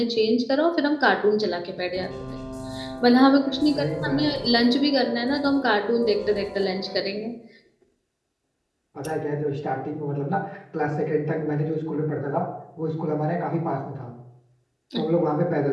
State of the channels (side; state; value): both; identical; correlation 1.00